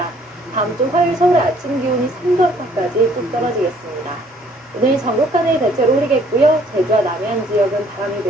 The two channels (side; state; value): both; normal; correlation 0.61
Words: 다음 주 화요일 서울의 아침 기온이 3도 안팎까지 뚝 떨어지겠습니다. 오늘 전국간에 대체로 흐리겠고요. 제주와 남해안 지역은 바람이